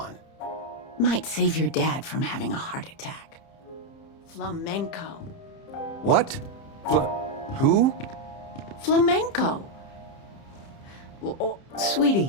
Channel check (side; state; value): right; late; 30 ms